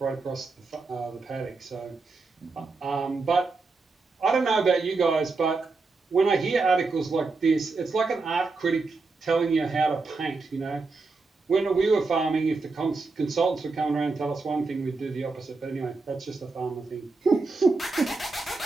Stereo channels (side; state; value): left; quieter; 3.9 dB